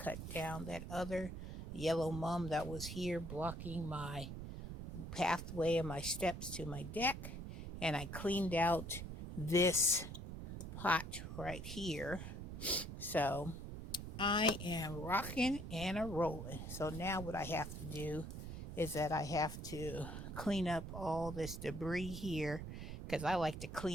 down that other yellow mum that was here blocking my pathway and my steps to my deck, and I cleaned out this pot right here. So I am rocking and a rolling. So now what I have to do is that I have to clean up all this debris here, because I like to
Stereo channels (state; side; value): noise; right; rumble, 7 dB below the sound